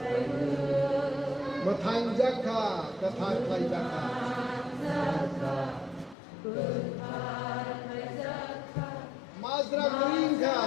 mà thành giác kha cái thành thay giác kha Mazra green kha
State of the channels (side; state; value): right; drops out; at 6.2 s